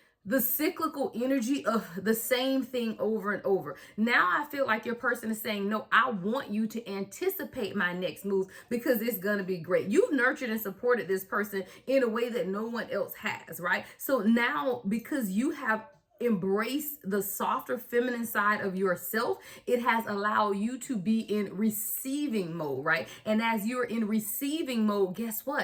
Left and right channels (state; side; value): identical; both; correlation 1.00